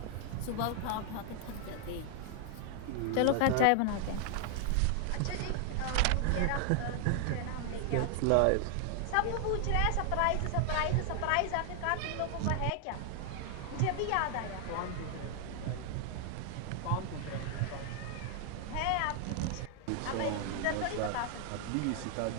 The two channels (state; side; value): different; both; correlation 0.00